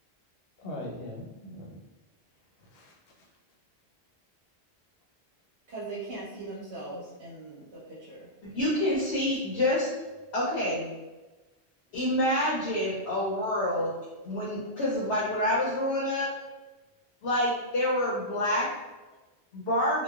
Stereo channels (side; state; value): both; normal; correlation -0.15